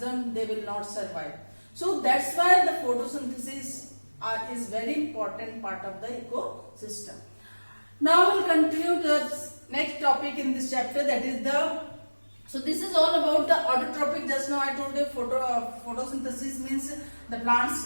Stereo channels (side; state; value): both; inverted; correlation -1.00